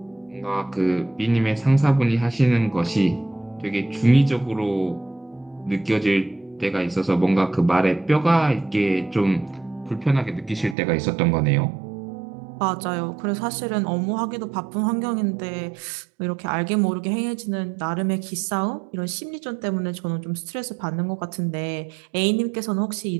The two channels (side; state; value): left; drops out; at 10.8 s